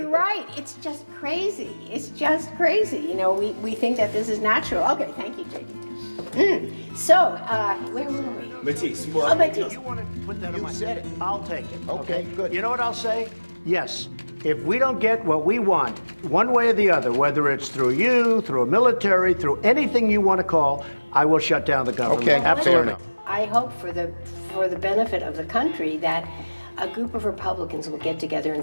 right. It's just crazy. It's just crazy. You know, we think that this is natural. Okay, thank you, JD. So, where were we? Matisse. Oh, Matisse. You want to put that on my... You said it. I'll take it. Okay, good. You know what I'll say? Yes. If we don't get what we want, one way or the other, whether it's through you, through a military, through anything you want to call, I will shut down the government. Okay, absolutely. I hope for the benefit of the country that a group of Republicans will get together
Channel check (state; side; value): inverted; both; correlation -1.00